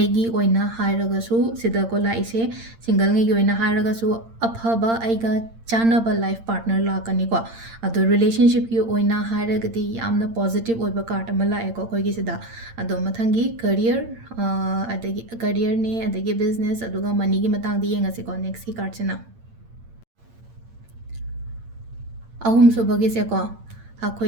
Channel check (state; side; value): late; left; 8.8 ms